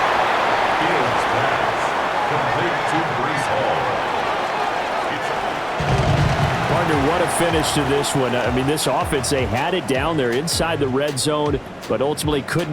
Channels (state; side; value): identical; both; correlation 1.00